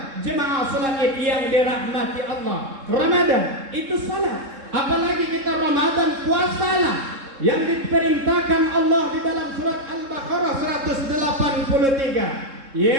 Jemaah salat Id yang dirahmati Allah. Ramadan itu salat. Apalagi kita Ramadan puasalah yang diperintahkan Allah di dalam surat Al-Baqarah 183.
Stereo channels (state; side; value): late; left; 3.7 ms